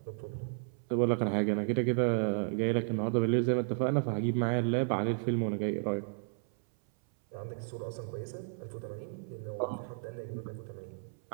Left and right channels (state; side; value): silent; left; 56 dB below the other